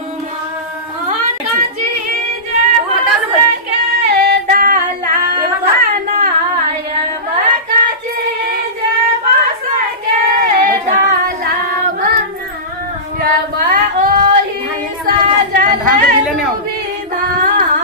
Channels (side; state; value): both; normal; correlation -0.20